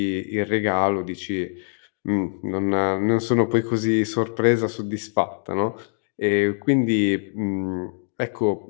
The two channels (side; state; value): right; silent; digital silence